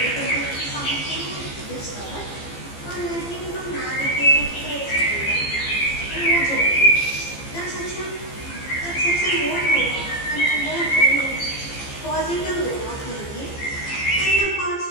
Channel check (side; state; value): right; late; 15 ms